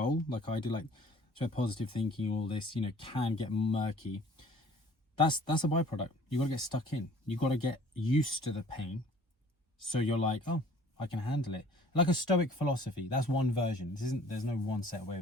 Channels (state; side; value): normal; both; correlation 0.52